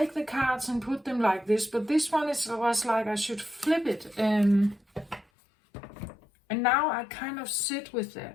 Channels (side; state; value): right; drops out; at 5.2 s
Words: the cards and put them like this. But this one was like I should flip it. And now I kind of sit with